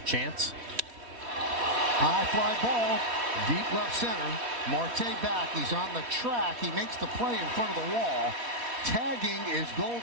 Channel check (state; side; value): late; left; 3.1 ms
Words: chance. High fly ball, deep left center. Marte back, he's on the track. He makes the play in front of the wall. Tagging is